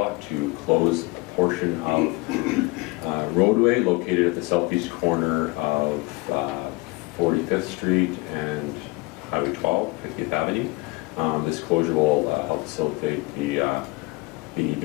to close a portion of roadway located at the southeast corner of 45th Street and Highway 12, 50th Avenue. This closure will help facilitate the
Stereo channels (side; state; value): right; quieter; 23.9 dB